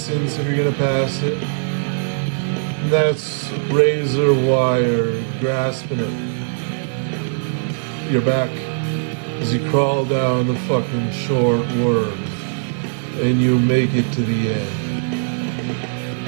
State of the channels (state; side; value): silent; left; digital silence